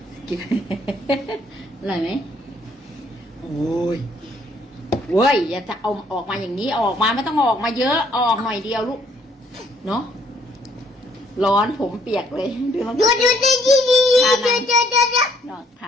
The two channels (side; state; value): both; normal; correlation 0.65